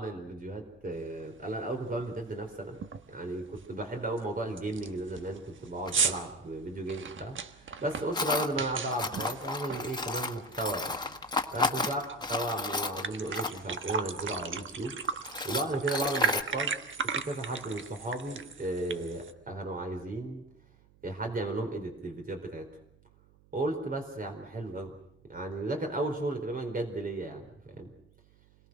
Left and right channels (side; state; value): right; noise; hum, 28 dB below the sound